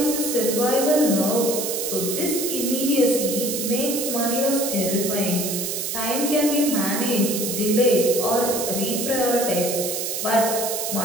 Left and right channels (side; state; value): right; noise; hiss, 3 dB below the sound